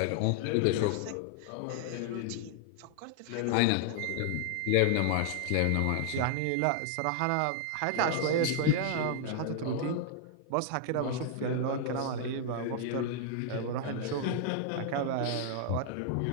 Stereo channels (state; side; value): different; both; correlation 0.00